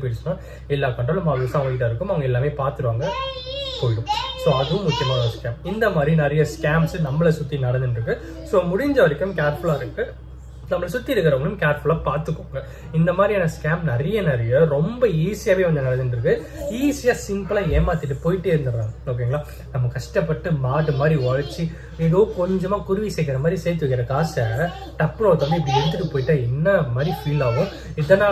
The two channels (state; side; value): identical; both; correlation 1.00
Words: போயிடுச்சுன்னா எல்லா கண்ட்ரோலும் அவங்க இருக்கும். அவங்க எல்லாமே பார்த்துருவாங்க, போயிடும். ஸோ அதுவும் முக்கியமான ஒரு ஸ்கேம். இந்த மாதிரி நிறைய ஸ்கேம்ஸ் நம்மளை சுற்றி நடந்துட்டு இருக்கு. ஸோ முடிஞ்ச வரைக்கும் கேர்ஃபுல்லாக இருக்கு. நம்மளை சுற்றி இருக்கிறவங்களும் கேர்ஃபுல்லாக பார்த்துக்கோங்க. இந்த மாதிரியான ஸ்கேம் நிறைய ரொம்ப ஈஸியாகவே வந்து நடந்துட்டு இருக்கு. ஈஸியாக சிம்பிளாக ஏமாத்திட்டு போயிட்டே இருந்துடுறாங்க. ஓகேங்களா? நம்ம கஷ்டப்பட்டு மாடு மாதிரி உழைச்சி ஏதோ கொஞ்சமா குருவி சேர்க்கிற மாதிரி சேர்த்து வைக்கிற காசை டப்புனு ஒருத்தவங்க இப்படி எடுத்துட்டு போயிட்டா என்ன மாதிரி ஃபீல் ஆகும்.